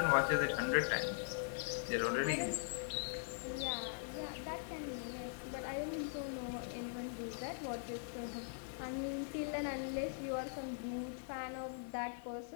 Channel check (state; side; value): silent; right; 50 dB below the other